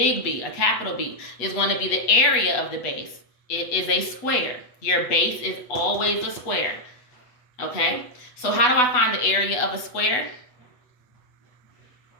a capital B, is going to be the area of the base. It is a square. Your base is always a square. Okay? So how do I find the area of a square?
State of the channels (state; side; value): late; right; 8.1 ms